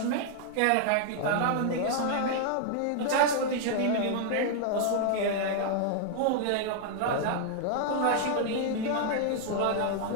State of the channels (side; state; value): both; different; correlation 0.00